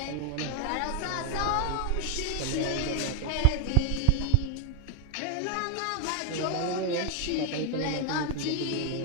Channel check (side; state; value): both; different; correlation 0.00